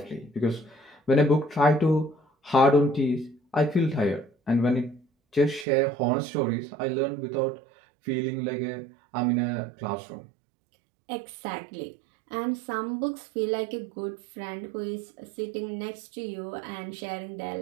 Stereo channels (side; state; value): left; drops out; at 5.7 s